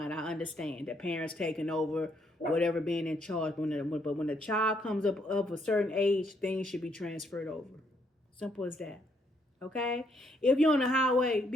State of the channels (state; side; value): normal; both; correlation 0.72